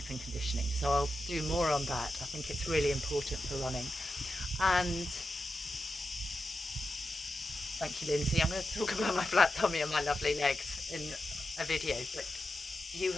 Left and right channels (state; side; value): normal; both; correlation 0.89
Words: and conditioning, so I'll do more on that. I think it's really important for running. And thank you, Lindsay. I'm going to talk about my flat tummy and my lovely legs in a video, but you